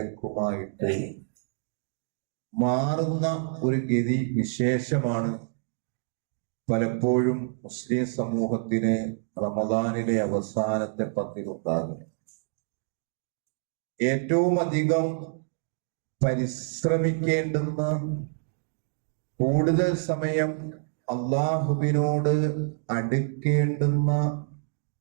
മാറുന്ന ഒരു ഗതി വിശേഷമാണ് പലപ്പോഴും മുസ്ലിം സമൂഹത്തിന് റമദാനിലെ അവസാനത്തെ 10 ഉണ്ടാകുന്നത്. ഏറ്റവും അധികം പരിശ്രമിക്കേണ്ടുന്ന, കൂടുതൽ സമയം അള്ളാഹുവിനോട് അടുക്കേണ്ടുന്ന,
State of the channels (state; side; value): silent; left; 60 dB below the other